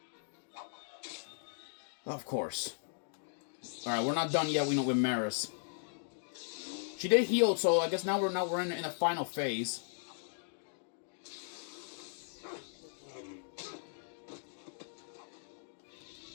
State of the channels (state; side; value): silent; right; digital silence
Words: Of course. Alright, we're not done yet, with Maris. She did heal, so I guess now we're in the final phase.